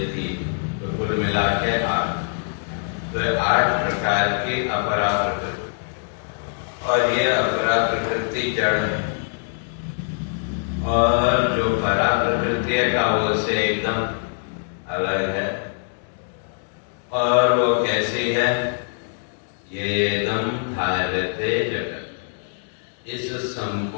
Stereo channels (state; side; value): silent; right; digital silence